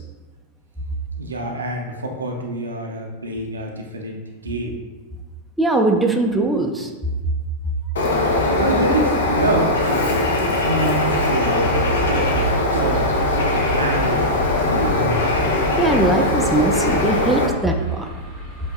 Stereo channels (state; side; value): normal; both; correlation -0.07